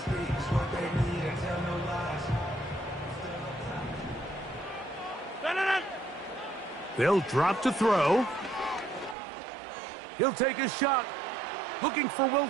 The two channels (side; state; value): left; drops out; at 9.2 s